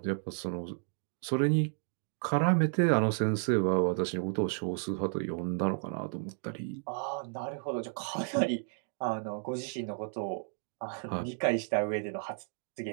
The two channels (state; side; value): silent; left; 56 dB below the other